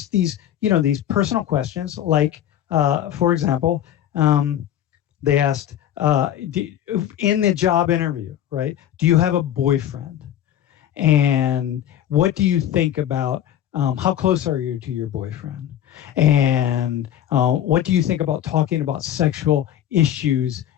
these personal questions, like, for example, they asked, in the job interview, right, do you have a boyfriend? And what do you think about, how close are you to your boyfriend? And what do you think about talking about sexual issues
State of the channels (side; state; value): right; quieter; 11.0 dB